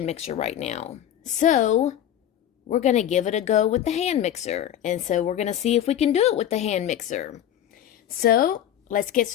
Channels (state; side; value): quieter; right; 10.9 dB